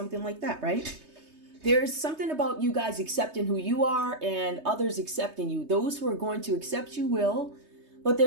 like that, right? There's something about you guys accepting who you are and others accepting you. Those who are going to accept you will, but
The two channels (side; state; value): left; late; 3.2 ms